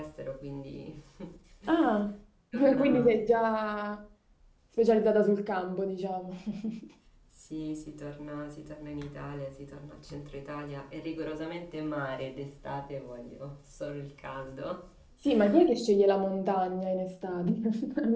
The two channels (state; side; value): identical; both; correlation 1.00